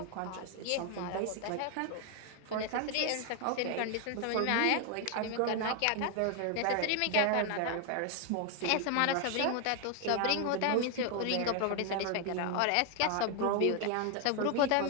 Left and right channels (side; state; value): both; different; correlation 0.01